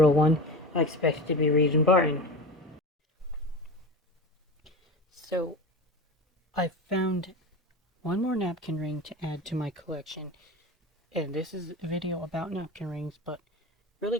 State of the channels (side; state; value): both; normal; correlation 0.28